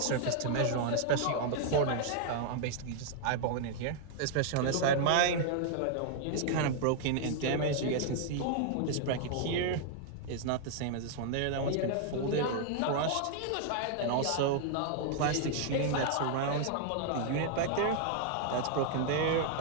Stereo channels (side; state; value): both; different; correlation 0.00